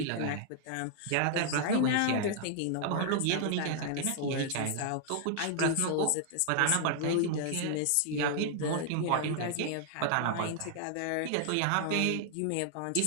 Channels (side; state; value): both; different; correlation 0.00